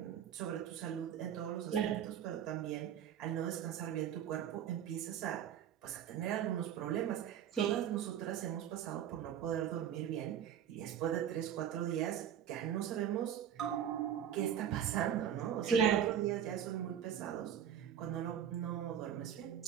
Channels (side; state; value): left; quieter; 9.6 dB